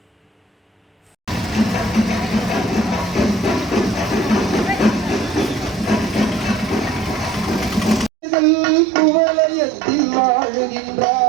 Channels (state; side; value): drops out; left; at 8.1 s